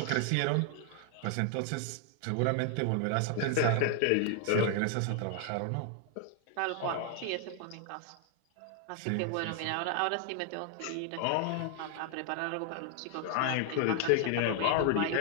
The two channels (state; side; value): different; both; correlation 0.00